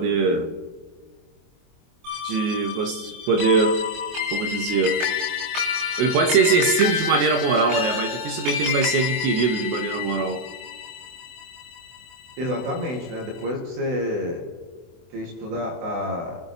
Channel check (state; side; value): late; left; 24 ms